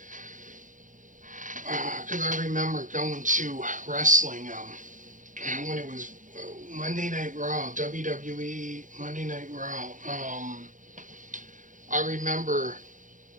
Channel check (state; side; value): late; left; 0.37 ms